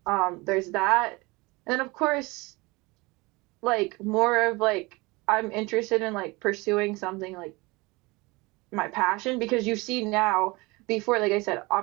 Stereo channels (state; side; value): quieter; left; 24.2 dB